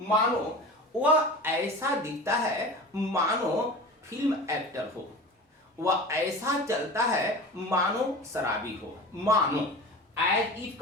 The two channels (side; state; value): both; normal; correlation 0.34